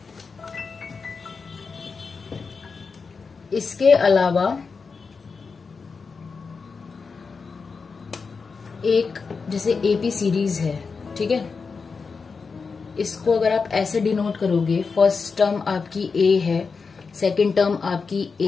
इसके अलावा एक जैसे AP सीरीज है, ठीक है, इसको अगर आप ऐसे डिनोट करोगे, फर्स्ट टर्म आपकी A है, सेकंड टर्म आपकी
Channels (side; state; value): right; quieter; 5.0 dB